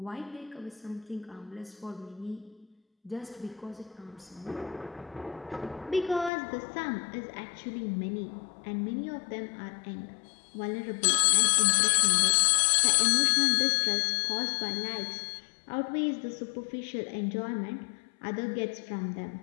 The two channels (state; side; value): drops out; right; at 6.3 s